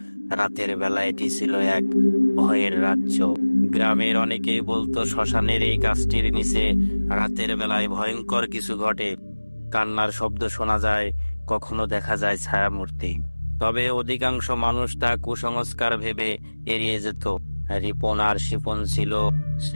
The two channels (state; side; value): inverted; both; correlation -1.00